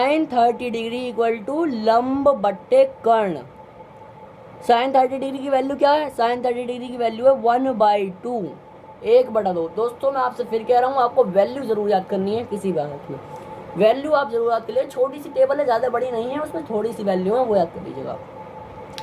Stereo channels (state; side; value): identical; both; correlation 1.00